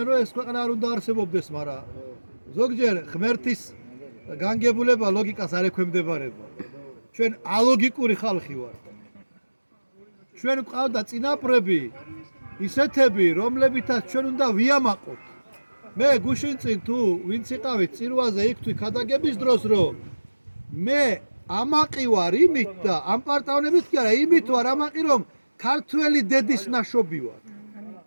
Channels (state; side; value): inverted; both; correlation -1.00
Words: რომ ეს ქვეყანა არ უნდა არსებობდეს, მაგრამ ზოგჯერ ღმერთის განგებულება ლოგიკას არ ექვემდებარება. ჩვენ ალოგიკური ხალხი ვართ. ჩვენ გვყავდა წინაპრები, ისეთები, რომლებითაც ჩვენ უნდა ვიამაყოთ. მე გუშინ წინ თუ ვინც იყავით წირვაზე იქ თუ ქადაგების დროს, რომ მე ამაყი ვარ იმით და ამ პარტავნებით კი არა, იმით ვარ ამაყი, რომ ქართველი დედის ნაშობი ვარ.